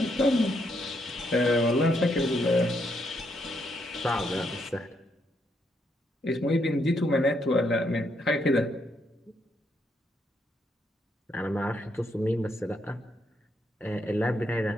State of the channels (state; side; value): normal; both; correlation 0.76